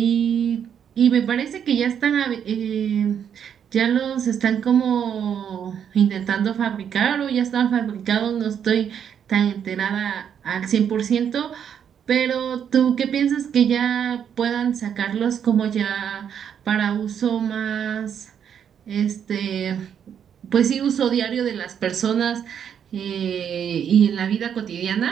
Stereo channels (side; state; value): left; quieter; 8.4 dB